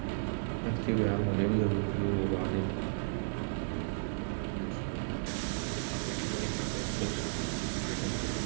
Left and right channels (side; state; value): left; silent; digital silence